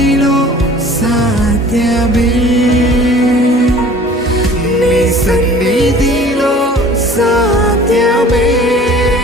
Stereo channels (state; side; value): normal; both; correlation 0.47